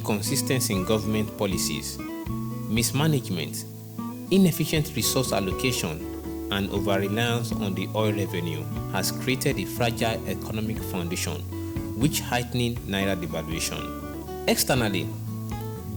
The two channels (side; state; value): both; identical; correlation 1.00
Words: in government policies, mismanagement, inefficient resource allocation, and over-reliance on the oil revenue has created a fragile economic foundation, which heightening Naira devaluation. Externally,